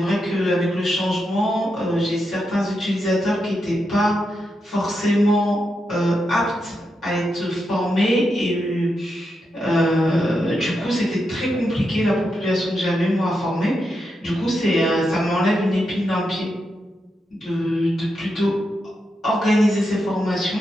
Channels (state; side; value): normal; both; correlation 0.85